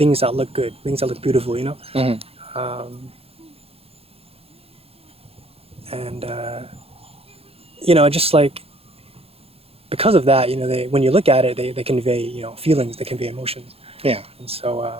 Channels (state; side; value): late; left; 0.28 ms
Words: that look good, things that look beautiful. You know, Mm-hmm. and you know, just like because of that, you know, they when you look at it, they convey you know feelings, they convey emotions, Yeah. and so